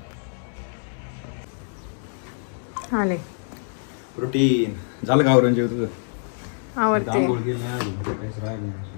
आले प्रोटीन झालं का आवरून जेव तुझं? आवडते.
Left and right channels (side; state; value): right; silent; digital silence